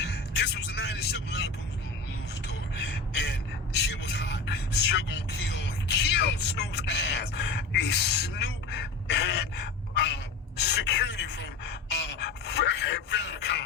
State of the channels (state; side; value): quieter; right; 3.8 dB